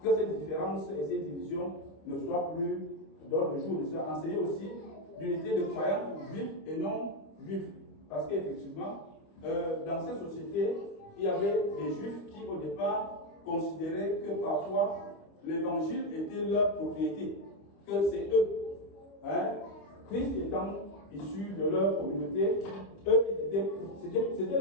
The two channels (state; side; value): late; right; 26 ms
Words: Que ces différences et ces divisions ne soient plus d'ordre jour. De ça, enseigner aussi l'unité de croyants juifs et non juifs. Parce qu'effectivement, dans cette société, il y avait des juifs qui au départ considéraient que parfois l'évangile était leur propriété, que c'est eux. Hein? Christ étant issu de leur communauté, eux, c'était